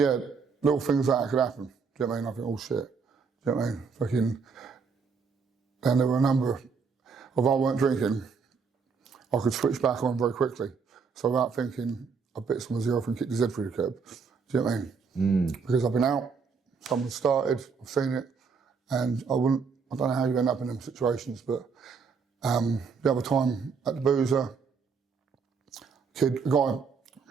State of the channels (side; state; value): left; quieter; 5.4 dB